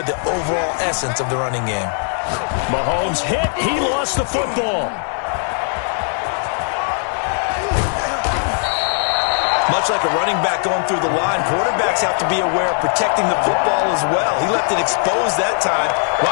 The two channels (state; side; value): silent; right; 55 dB below the other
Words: the overall essence of the running game. Mahomes hit. He lost the football. Much like a running back going through the line, quarterbacks have to be aware of protecting the football as well. He left it exposed that time,